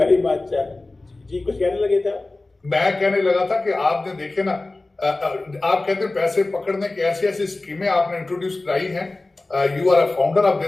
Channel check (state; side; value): quieter; right; 3.1 dB